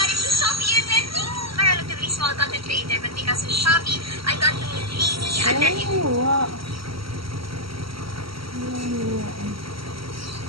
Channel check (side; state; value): left; late; 0.75 ms